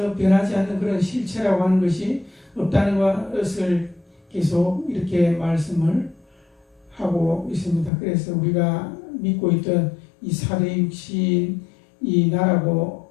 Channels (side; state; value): right; drops out; at 7.9 s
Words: 변하지 않는 그런 실체라고 하는 것이 없다는 것을 계속 이렇게 말씀을 하고 있습니다. 그래서 우리가 믿고 있던 이 사대 육신, 이 나라고